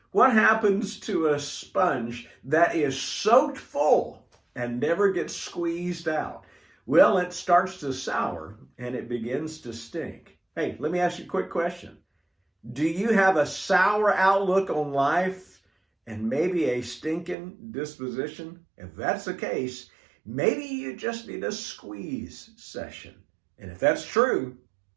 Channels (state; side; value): drops out; left; at 17.4 s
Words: What happens to a sponge that is soaked full and never gets squeezed out? Well, it starts to sour and it begins to stink. Hey, let me ask you a quick question. Do you have a sour outlook on life and maybe a stinking disposition? If that's the case, maybe you just need a squeeze session. And if that's true,